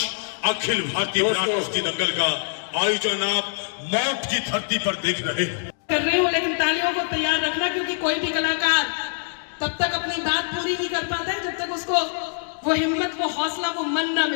अखिल भारतीय विराट कुश्ती दंगल का आयोजन आप मौत की धरती पर देख रहे हैं। कर रही हूँ, लेकिन तालियों को तैयार रखना, क्योंकि कोई भी कलाकार तब तक अपनी बात पूरी नहीं कर पाता है जब तक उसको वो हिम्मत, वो हौसला, वो मन ना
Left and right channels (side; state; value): right; silent; digital silence